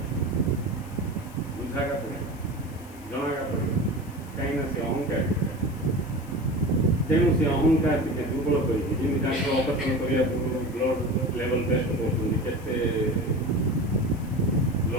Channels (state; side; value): noise; left; hiss, 23 dB below the sound